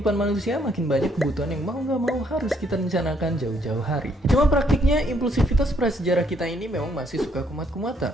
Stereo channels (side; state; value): both; normal; correlation 0.70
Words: manusia, makin banyak kebutuhan yang mau gak mau harus kita rencanakan jauh-jauh hari. Cuma praktiknya, impulsivitas prasejarah kita ini memang masih suka kumat-kumatan.